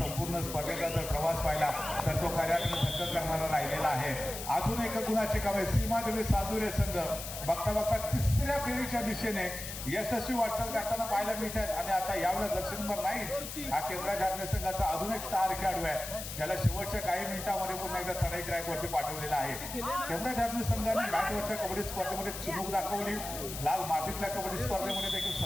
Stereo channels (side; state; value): left; noise; hiss, 8 dB below the sound